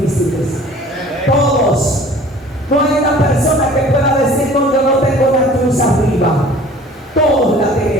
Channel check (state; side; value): normal; both; correlation 0.48